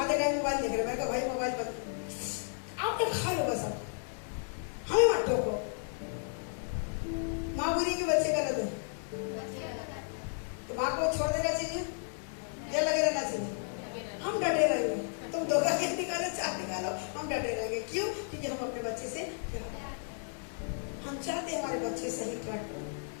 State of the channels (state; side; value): silent; right; 55 dB below the other